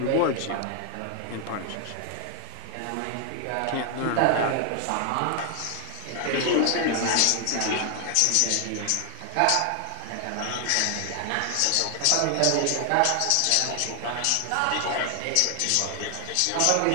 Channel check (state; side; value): different; both; correlation 0.00